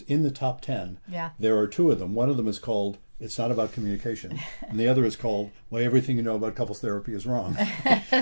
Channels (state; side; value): inverted; both; correlation -1.00